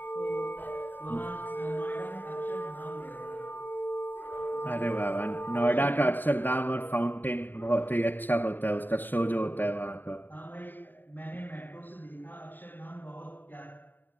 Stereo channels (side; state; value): right; late; 0.091 ms